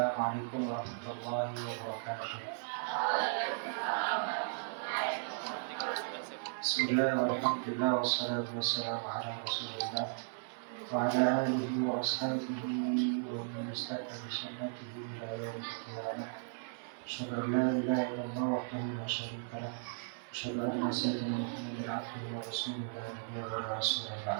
warahmatullahi wabarakatuh. Bismillahirrahmanirrahim. Wassalatu wassalamu ala Rasulillah wa ala alihi wa ashabihi wa man istaqama bi sunnatihi ila yaumil qiyamah. Asyhadu an la ilaha illallah wahdahu la syarika lah. Asyhadu anna sayyidina Muhammadan abduhu wa rasuluhu la nabiyya wa la rasula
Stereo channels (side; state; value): left; silent; 54 dB below the other